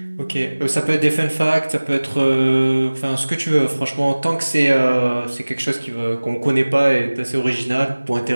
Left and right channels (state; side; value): inverted; both; correlation -1.00